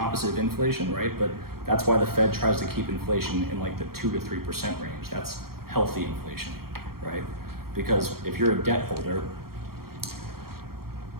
of inflation, right? But that's why the Fed tries to keep inflation in like the 2 to 3% range. That's healthy inflation, right? Because if you're a debt holder,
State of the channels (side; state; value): left; late; 0.94 ms